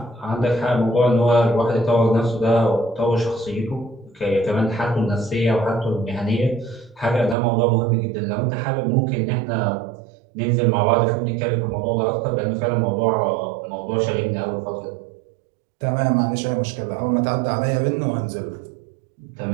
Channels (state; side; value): drops out; left; at 7.4 s